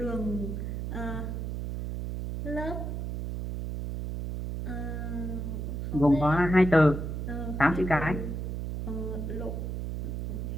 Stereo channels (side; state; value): right; noise; hum, 4 dB below the sound